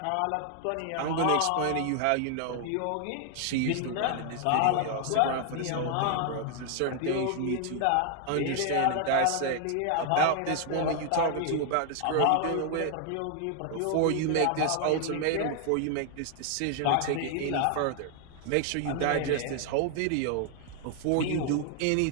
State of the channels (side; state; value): both; different; correlation 0.00